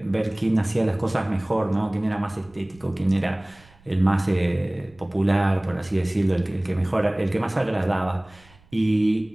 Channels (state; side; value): noise; right; rumble, 28 dB below the sound